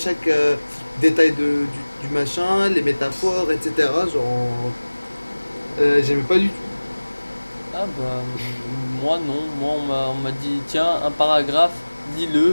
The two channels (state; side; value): inverted; both; correlation -1.00